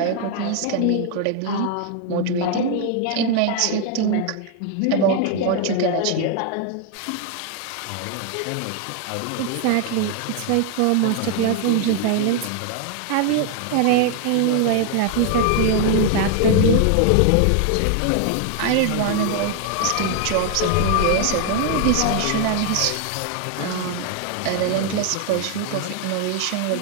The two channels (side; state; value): both; different; correlation 0.00